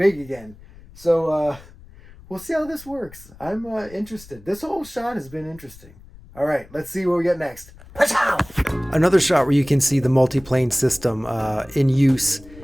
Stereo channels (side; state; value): left; noise; rumble, 21 dB below the sound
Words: again. So we'll see how this works. I'm interested. This whole shot has been interesting. All right, let's see what we get next. Another shot where you can see the multi-plane system in use.